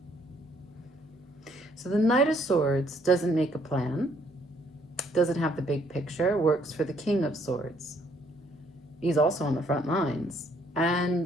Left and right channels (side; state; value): both; normal; correlation 0.66